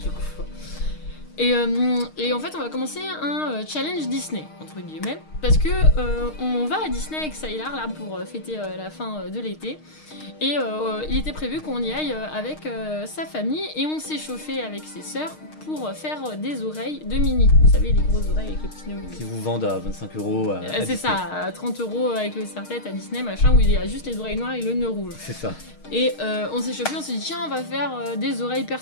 quoi. Et en fait, on va commencer un challenge Disney, entre guillemets, parce que on va à Disney avec Sylar là pour fêter la fin de l'été. Et il était prévu qu'on y aille avec sa famille et on s'est chauffé avec ses sœurs pour faire des oreilles de Minnie. Vous savez, les grosses oreilles avec le petit nœud. Qui vous vendent à 25 €. C'est ça, à 30 € avec le serre-tête à Disney, machin, où il y a juste les oreilles noires et le nœud rouge. C'est ça. Et on s'est chauffé, on s'est dit tiens, on va faire des oreilles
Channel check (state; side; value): late; right; 6.5 ms